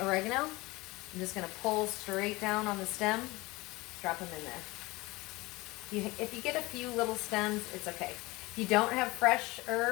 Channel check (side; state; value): right; quieter; 21.8 dB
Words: oregano. I'm just gonna pull straight down on the stem, drop them in there. If you get a few little stems, it's okay. If you don't have fresh